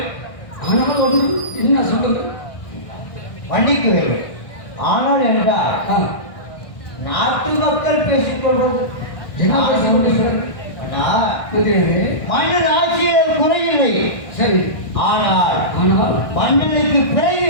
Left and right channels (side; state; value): right; late; 1.6 ms